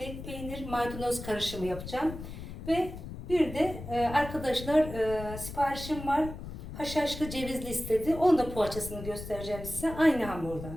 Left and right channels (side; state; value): left; noise; rumble, 10 dB below the sound